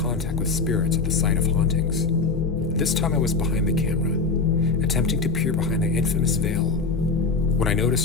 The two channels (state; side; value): quieter; right; 4.2 dB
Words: with spirits at the site of hauntings. This time I was behind the camera, attempting to peer behind the infamous veil, when I